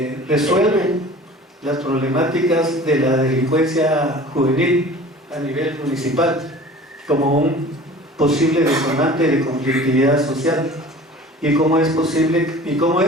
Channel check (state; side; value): normal; both; correlation 0.43